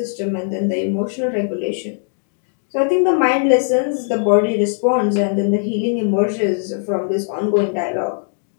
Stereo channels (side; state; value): right; silent; digital silence